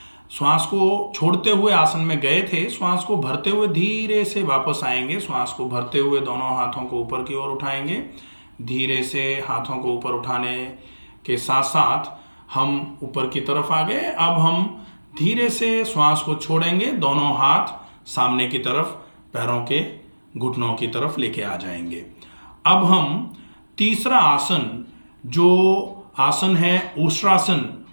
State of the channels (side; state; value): both; inverted; correlation -1.00